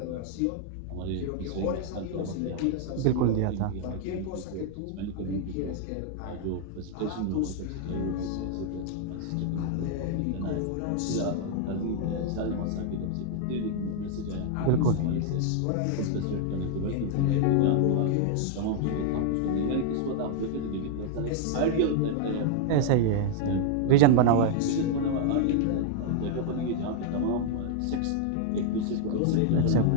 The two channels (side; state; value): both; different; correlation 0.00